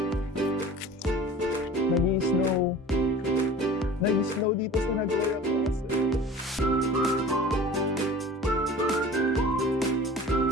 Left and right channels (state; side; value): normal; both; correlation 0.41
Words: Nag-i-snow. Nag-i-snow dito sa Nagoya Castle.